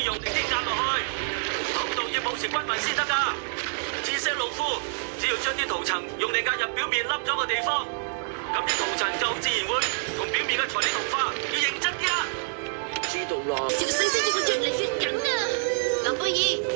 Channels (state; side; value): silent; left; 60 dB below the other